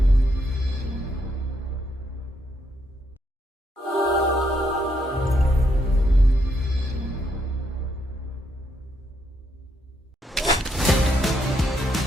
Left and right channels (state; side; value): normal; both; correlation 0.76